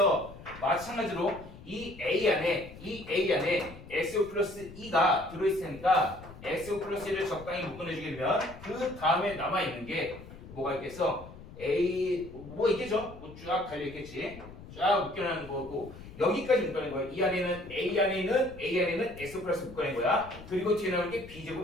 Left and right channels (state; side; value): noise; left; rumble, 16 dB below the sound